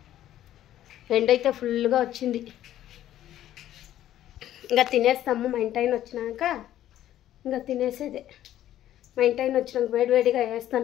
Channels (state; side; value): quieter; right; 12.4 dB